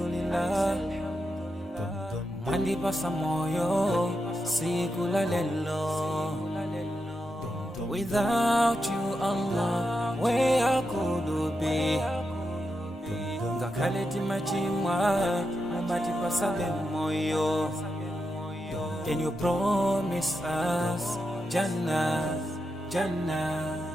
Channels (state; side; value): normal; both; correlation 0.87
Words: Mandipasa moyo sikula lelo. Without you, Allah, where I could be? Ngakaleti machimwa, mandipasa moyo. Can you promise us Jannah, Jannah?